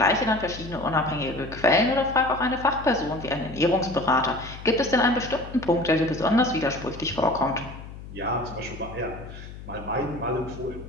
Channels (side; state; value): left; noise; hum, 13 dB below the sound